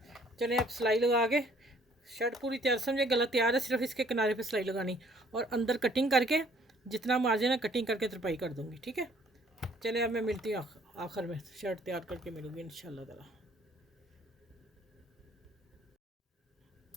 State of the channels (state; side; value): normal; both; correlation 0.60